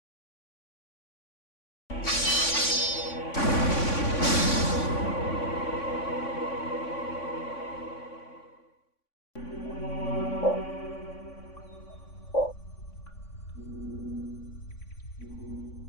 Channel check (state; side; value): late; right; 3.5 ms